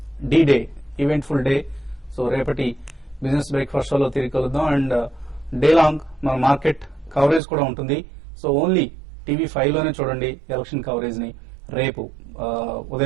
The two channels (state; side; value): drops out; left; at 7.4 s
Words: day event full day. So రేపటి బిజినెస్ బ్రేక్ఫాస్ట్ షోలో తిరిగి కలుద్దాం. అండ్ డే లాంగ్ మన మార్కెట్ కవరేజ్ కూడా ఉంటుంది. సో ఓన్లీ TV5 లోనే చూడండి ఎలక్షన్ కవరేజ్ ని రేపు